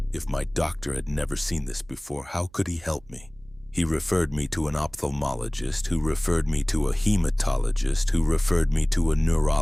If my doctor had never seen this before, how could he help me? He referred me to an ophthalmologist, who referred me to a hematologist, who referred me to a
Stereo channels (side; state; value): right; noise; hum, 26 dB below the sound